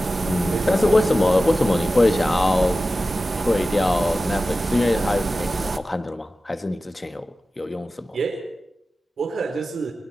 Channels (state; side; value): normal; both; correlation 0.94